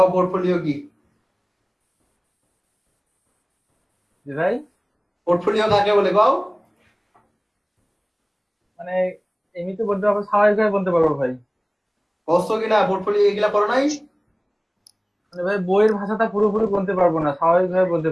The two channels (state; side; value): identical; both; correlation 1.00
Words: পোর্টফোলিও কি? জি ভাই, পোর্টফোলিও কাকে বলে কও? মানে এমনিতে বলতে পারবো, স্বাভাবিকভাবে বলতে পারবো ভাই। কষ্ট কিনা পোর্টফোলিও এগুলা করো নাই? মানে ভাই বইয়ের ভাষাটা পুরোপুরি বলতে পারবো না, স্বাভাবিকভাবে বলতে